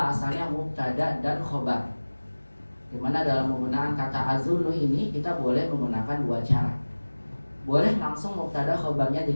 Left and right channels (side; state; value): both; inverted; correlation -1.00